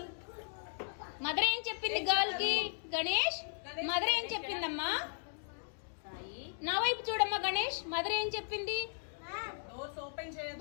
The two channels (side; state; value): right; silent; digital silence